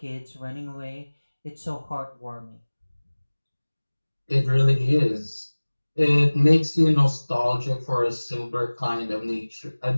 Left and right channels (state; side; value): inverted; both; correlation -1.00